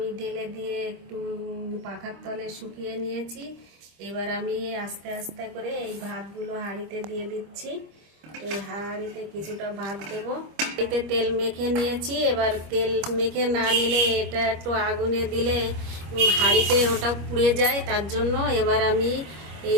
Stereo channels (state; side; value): late; left; 25 ms